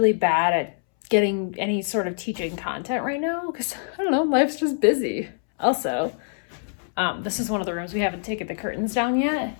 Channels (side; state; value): right; silent; 62 dB below the other